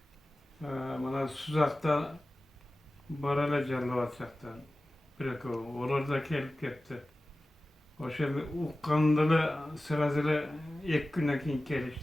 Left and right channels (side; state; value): both; normal; correlation 0.96